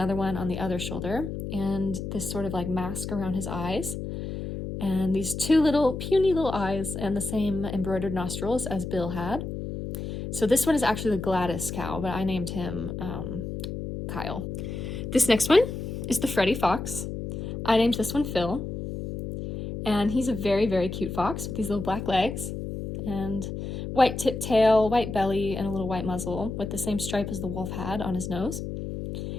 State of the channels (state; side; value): noise; left; hum, 6 dB below the sound